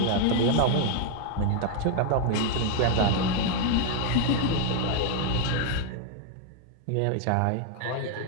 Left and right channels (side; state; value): both; different; correlation 0.00